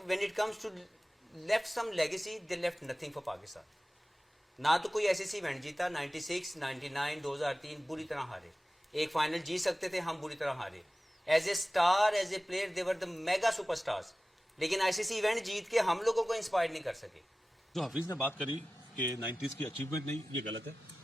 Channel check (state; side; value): normal; both; correlation 0.96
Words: when it comes to left some legacy, they left nothing for Pakistan. ना तो कोई ऐसी इवेंट जीता, 96, 99, 2003 बुरी तरह हारे। एक फाइनल जीत सकते थे, हम बुरी तरह हारे। As a star, as a player, they were the mega superstars, लेकिन आईसीसी इवेंट जीत के हम लोगों को इंस्पायर नहीं कर सके। जो हफीज ने बात करी कि 90s की अचीवमेंट नहीं, ये गलत है।